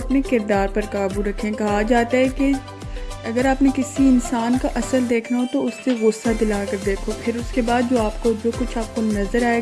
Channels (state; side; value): identical; both; correlation 1.00